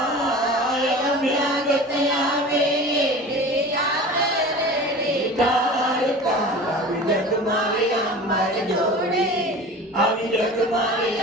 આવી જગ મારે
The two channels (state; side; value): normal; both; correlation 0.37